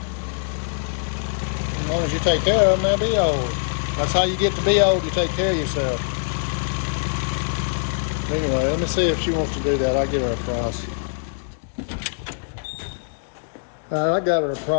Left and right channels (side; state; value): right; silent; digital silence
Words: as long as you take care of them, they'll be old. That's how you get to be old. You take care of yourself. Anyway, let me see if she wants to do that. I'll get her a price. I got her a